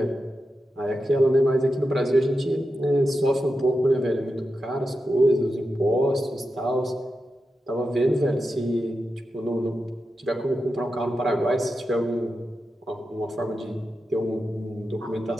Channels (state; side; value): normal; both; correlation 0.90